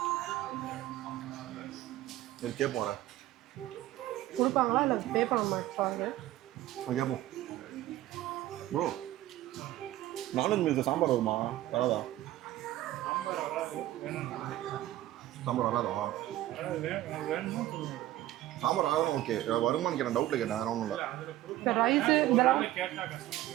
சரி கேட்போம். வர கொடுப்பாங்களா இல்லை பே பண்ண பாருங்க. கேட்போம். ப்ரோ நான்வெஜ் மீல்ஸ் சாம்பார் வருமா? வராதா? சாம்பார் வராதா? சாம்பார் ஆகணும். ஓகே, வருமானு கேட்டேன். டவுட்டில் கேட்டேன், வேற ஒன்றும் இல்லை. இந்த ரைஸு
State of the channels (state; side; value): quieter; left; 14.8 dB